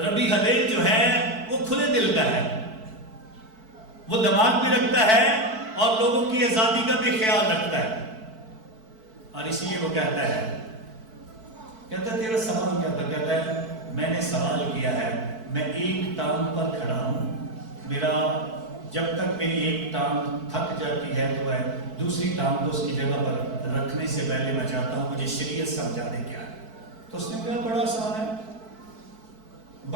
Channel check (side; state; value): left; late; 4.5 ms